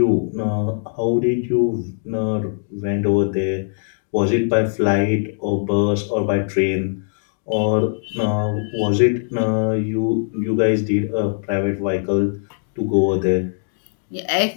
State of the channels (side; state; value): right; silent; digital silence